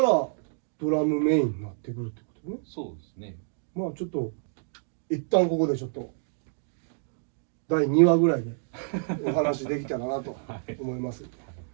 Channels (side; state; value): left; silent; 59 dB below the other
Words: ドラムメインになってくるってことね。そうですね。まあちょっと一旦ここでちょっと第2話ぐらいでお話できたらなと思います。よ